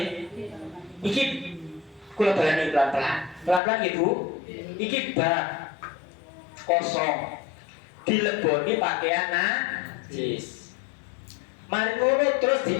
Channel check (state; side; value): drops out; right; at 3.6 s